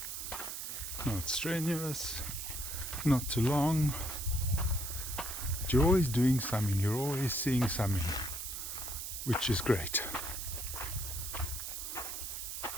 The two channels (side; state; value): right; noise; hiss, 6 dB below the sound